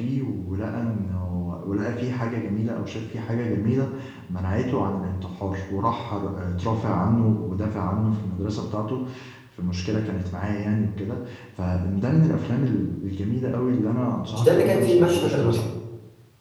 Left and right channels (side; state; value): both; identical; correlation 1.00